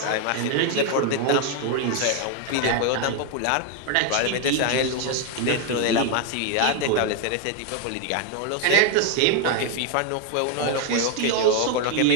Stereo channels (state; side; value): different; both; correlation 0.01